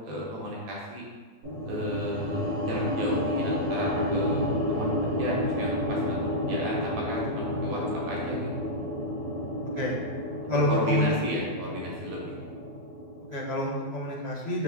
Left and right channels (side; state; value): left; late; 12 ms